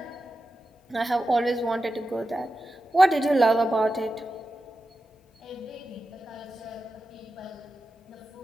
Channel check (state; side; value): normal; both; correlation 0.92